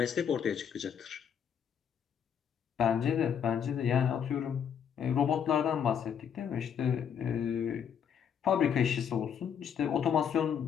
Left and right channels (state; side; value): quieter; right; 8.0 dB